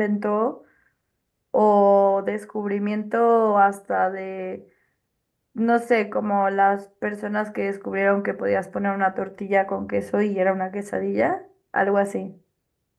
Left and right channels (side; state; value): both; identical; correlation 1.00